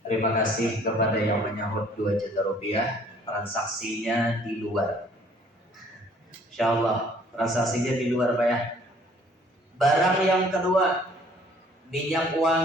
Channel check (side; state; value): both; normal; correlation 0.58